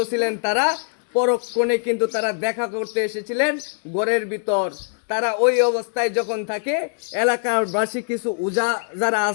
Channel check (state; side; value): silent; right; digital silence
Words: ছিলেন তারা, পরক্ষণে কিন্তু তারা দেখা করতে এসেছিলেন ঘরের ভিতর। তারা ওই অবস্থায় যখন থাকে, এলাকাবাসী কিছু উজা যারা